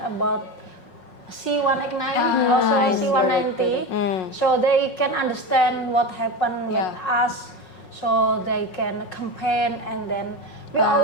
C189 also C190, so they can understand what happened with us, so they can campaign. And then we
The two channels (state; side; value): late; right; 5.5 ms